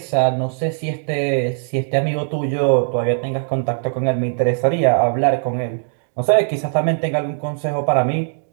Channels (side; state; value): left; silent; digital silence